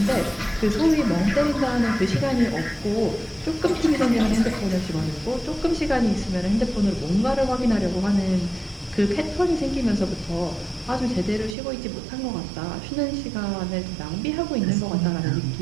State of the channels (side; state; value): left; drops out; at 11.6 s